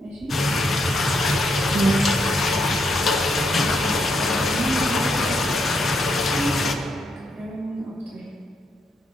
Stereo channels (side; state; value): both; normal; correlation 0.78